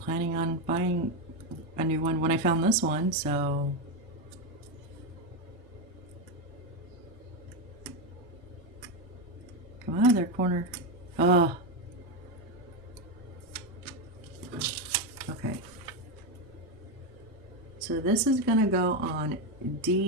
planning on buying a new one when I found this one, so... Come out of there, corner. Oh. Okay. So this is gonna go on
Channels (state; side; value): normal; both; correlation 0.09